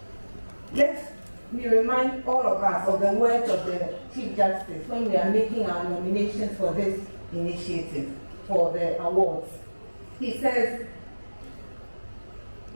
let me remind all of us of the words of the Chief Justice when we are making our nominations for this initiative, for the awards. He says,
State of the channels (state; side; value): inverted; both; correlation -1.00